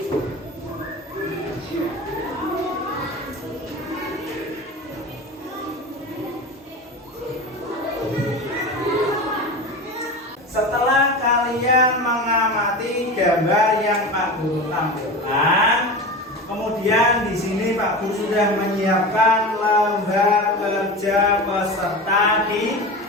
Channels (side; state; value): both; normal; correlation 0.29